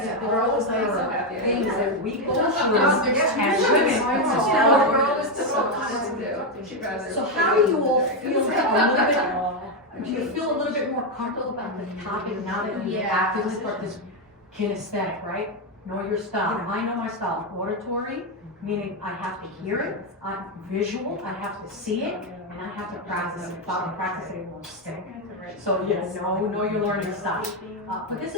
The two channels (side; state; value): both; normal; correlation 0.05